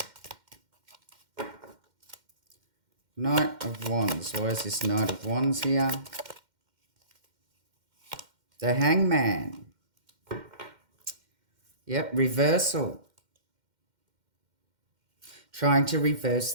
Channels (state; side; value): late; left; 2.1 ms